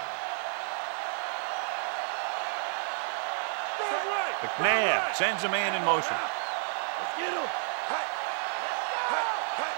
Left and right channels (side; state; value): left; silent; 57 dB below the other